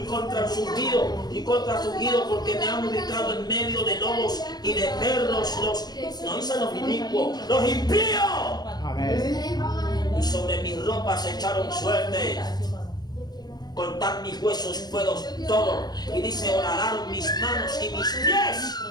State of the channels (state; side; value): late; right; 0.20 ms